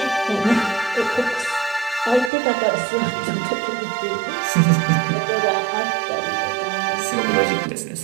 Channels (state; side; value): drops out; left; at 2.3 s